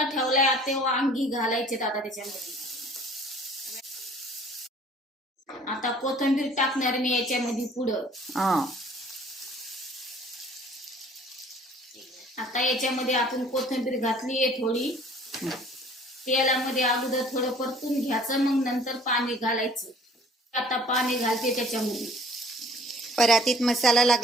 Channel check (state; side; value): normal; both; correlation 0.52